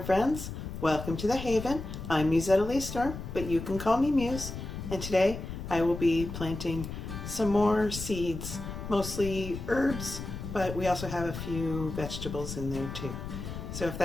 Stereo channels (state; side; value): noise; left; rumble, 8 dB below the sound